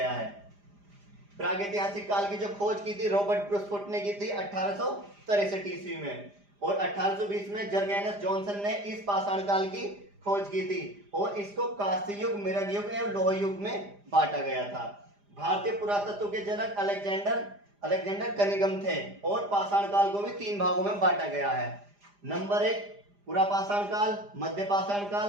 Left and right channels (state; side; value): late; left; 4.9 ms